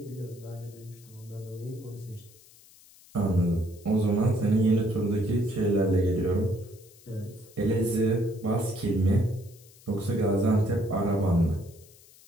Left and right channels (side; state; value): left; noise; hiss, 25 dB below the sound